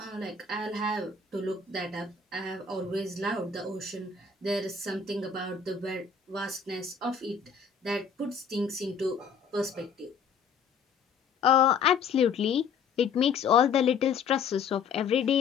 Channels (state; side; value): quieter; right; 5.8 dB